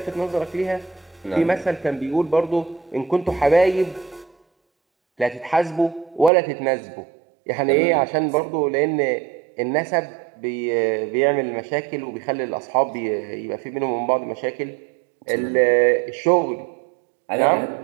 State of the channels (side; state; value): left; drops out; at 6.3 s